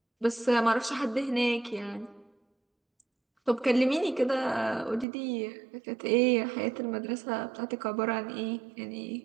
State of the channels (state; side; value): drops out; left; at 5.1 s